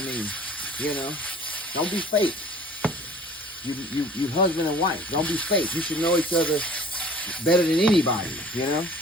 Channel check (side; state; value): both; normal; correlation 0.48